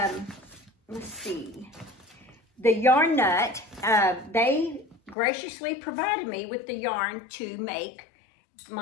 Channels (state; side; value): drops out; right; at 5.2 s